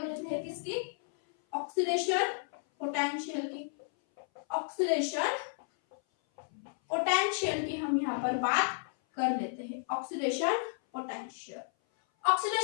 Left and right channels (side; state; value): right; silent; 56 dB below the other